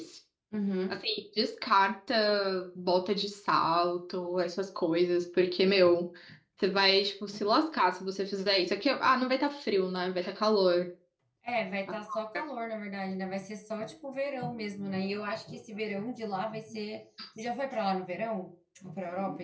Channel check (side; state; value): both; identical; correlation 1.00